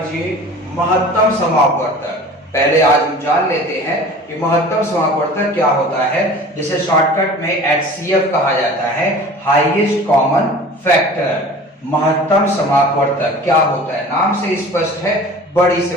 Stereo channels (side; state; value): both; normal; correlation 0.42